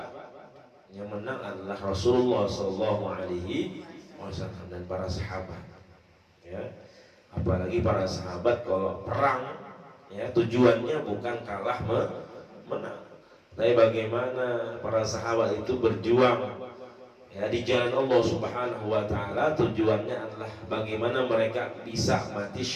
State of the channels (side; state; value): both; identical; correlation 1.00